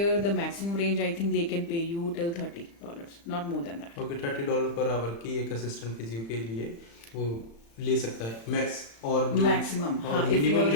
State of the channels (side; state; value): right; late; 35 ms